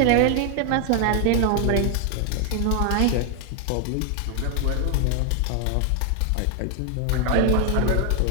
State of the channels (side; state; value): both; different; correlation 0.00